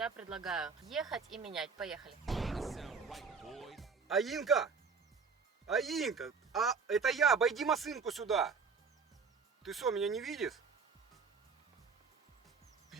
предлагаю ехать и менять. Поехали. Аинка! Аинка! А, это я! Обойди машинку сюда! Ты что, меня не видишь?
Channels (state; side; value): quieter; left; 5.3 dB